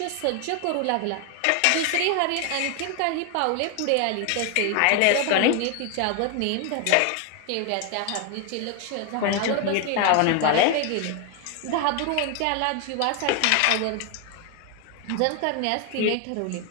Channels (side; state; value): both; different; correlation 0.01